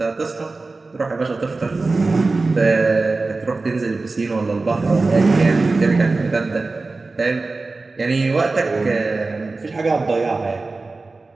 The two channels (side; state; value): left; quieter; 3.6 dB